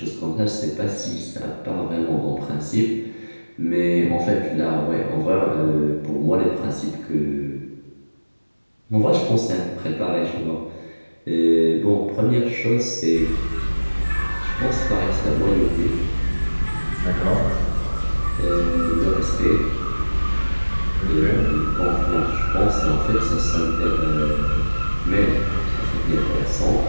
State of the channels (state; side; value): inverted; both; correlation -1.00